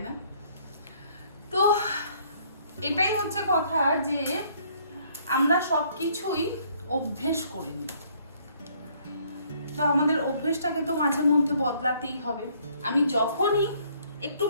না? তো এটাই হচ্ছে কথা, যে আমরা সব কিছুই অভ্যেস করে নিই। তো আমাদের অভ্যেসটাকে তো মাঝে মধ্যে বদলাতেই হবে। আমি যখনই একটু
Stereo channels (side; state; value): both; inverted; correlation -0.63